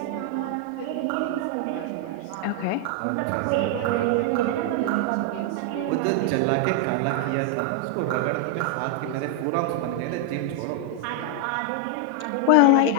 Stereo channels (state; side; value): different; both; correlation 0.00